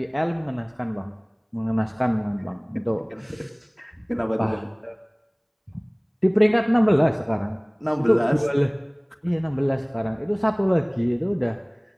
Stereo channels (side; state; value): both; identical; correlation 1.00